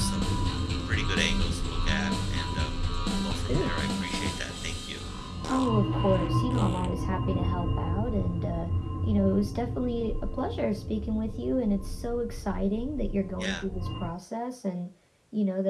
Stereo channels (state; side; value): identical; both; correlation 1.00